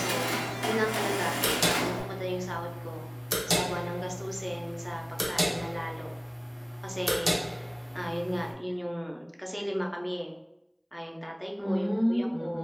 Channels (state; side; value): identical; both; correlation 1.00